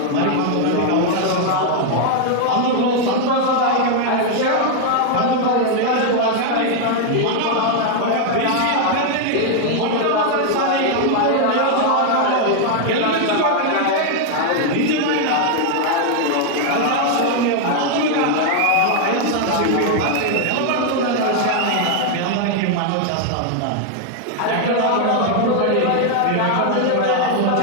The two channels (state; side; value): different; both; correlation 0.00